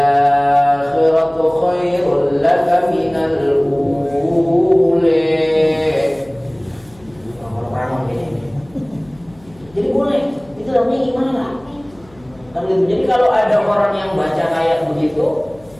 khairul laka minal ula. Jadi boleh, itu namanya gimana? Kan gitu. Jadi kalau ada orang yang baca kayak begitu,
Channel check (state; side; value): noise; left; hum, 27 dB below the sound